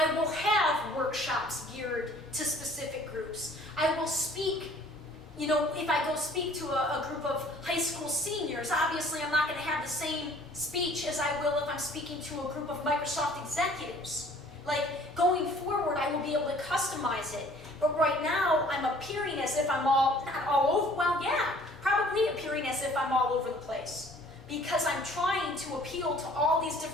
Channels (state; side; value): normal; both; correlation 0.54